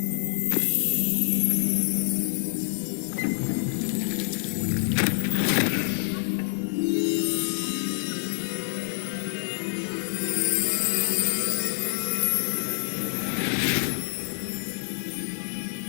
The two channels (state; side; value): silent; right; 60 dB below the other